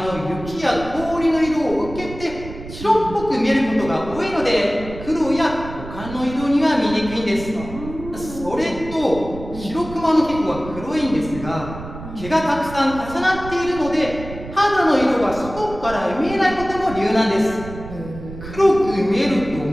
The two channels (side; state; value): right; noise; rumble, 12 dB below the sound